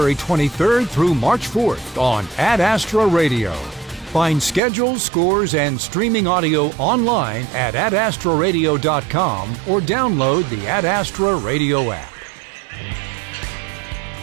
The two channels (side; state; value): left; drops out; at 4.6 s